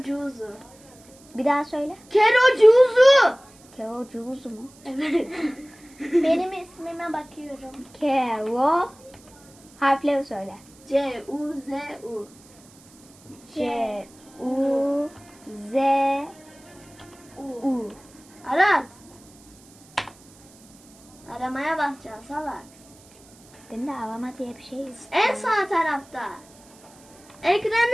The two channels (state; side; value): noise; right; hiss, 26 dB below the sound